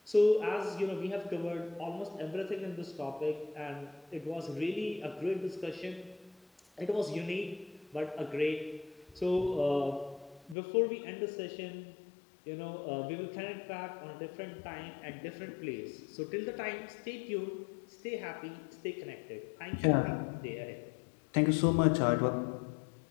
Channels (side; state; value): right; drops out; at 10.6 s